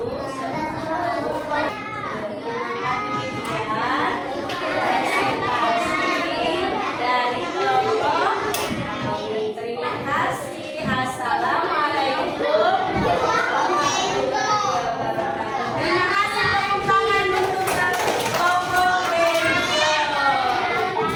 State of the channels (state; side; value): identical; both; correlation 1.00